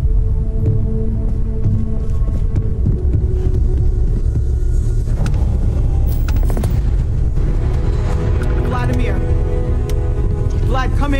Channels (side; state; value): both; identical; correlation 1.00